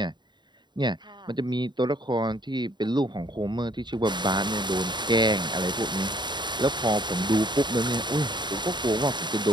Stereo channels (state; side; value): late; left; 0.22 ms